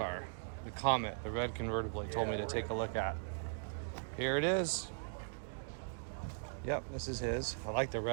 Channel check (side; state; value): left; silent; digital silence